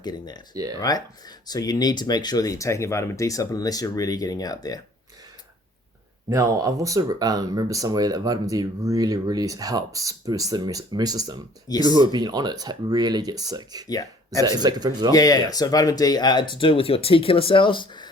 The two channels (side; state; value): both; normal; correlation 0.54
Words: getting that, right? So you need to make sure that you're taking a vitamin D supplement unless you're really getting out there. Now, I've also remember somewhere that vitamin D really, really helps boost the immune system. Yes. People who have been on it really get sick. Yeah, Is that confirmed as well? Yeah. So vitamin D, to do with your T killer cells,